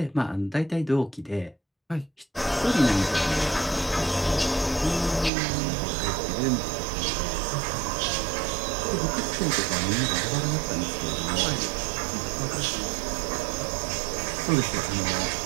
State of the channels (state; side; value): drops out; left; at 5.3 s